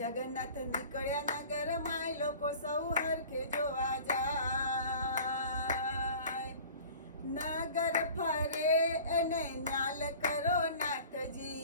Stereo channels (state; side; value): inverted; both; correlation -0.44